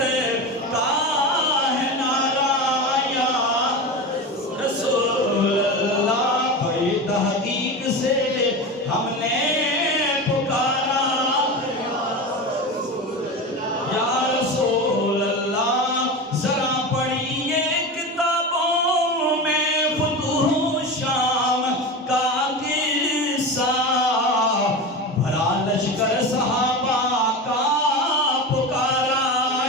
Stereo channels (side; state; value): both; normal; correlation 0.25